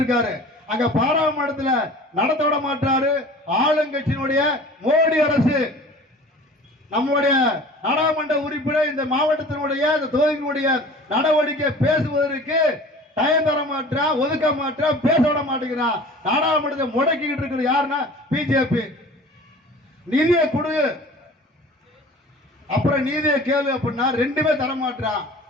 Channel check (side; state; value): both; normal; correlation 0.43